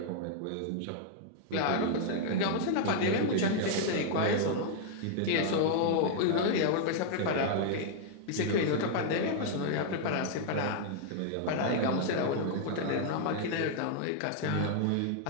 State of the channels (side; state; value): both; different; correlation -0.01